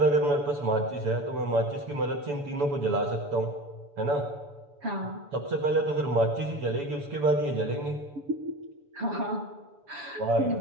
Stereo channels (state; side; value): late; left; 6.9 ms